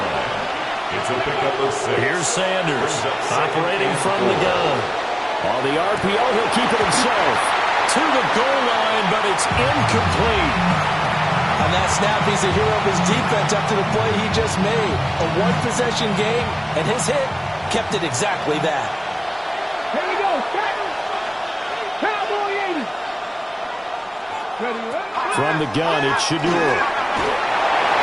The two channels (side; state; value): both; identical; correlation 1.00